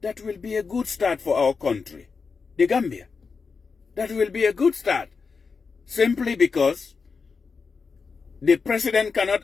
that will be a good start for our country, the Gambia. That will be a good start. Simply because the president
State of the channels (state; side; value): quieter; right; 5.0 dB